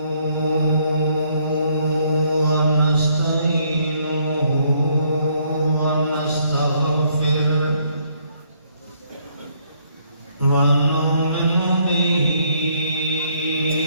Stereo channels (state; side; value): inverted; both; correlation -0.69